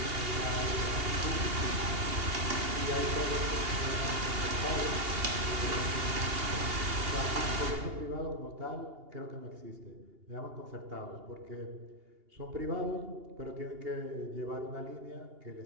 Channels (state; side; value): late; left; 2.8 ms